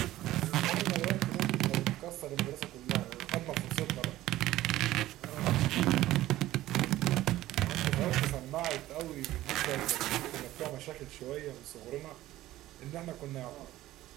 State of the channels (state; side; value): quieter; left; 15.3 dB